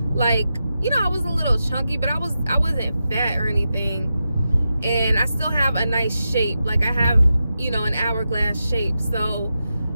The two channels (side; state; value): both; inverted; correlation -0.89